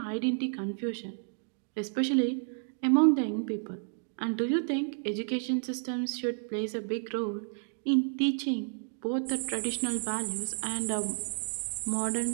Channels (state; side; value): silent; left; digital silence